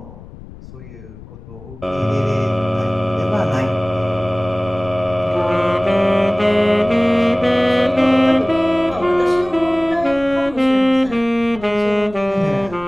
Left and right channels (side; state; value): left; noise; rumble, 18 dB below the sound